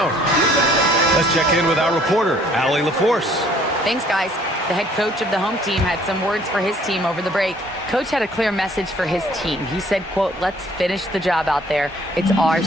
Let's check in with our reporter, Allie LaForce. Thanks, guys. The head coach of the home team had some words for his team over the break. Coach had a clear message for his team. He said, quote, let's finish the job out there. It's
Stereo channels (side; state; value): both; normal; correlation 0.59